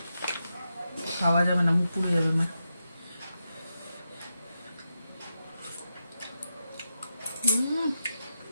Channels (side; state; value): both; inverted; correlation -0.88